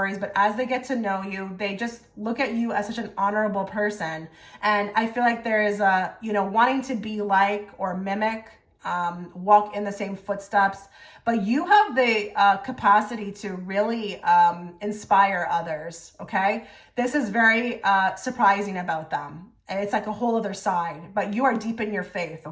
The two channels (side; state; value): both; identical; correlation 1.00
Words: but as they get to know you, they just look at you as such an honorable person. And I feel like there is a, wanting to be like or mimic walk in the same footsteps, but you have the capacity to really inspire others, okay? This is very surprising about them. And it's like a whole other side, but you are deep in your faith,